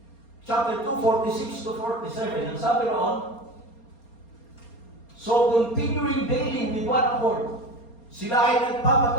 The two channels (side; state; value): right; late; 4.3 ms